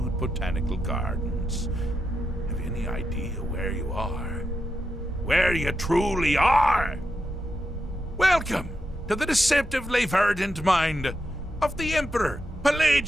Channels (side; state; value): both; normal; correlation 0.86